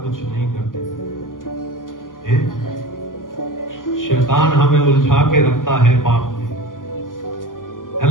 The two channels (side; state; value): right; late; 0.89 ms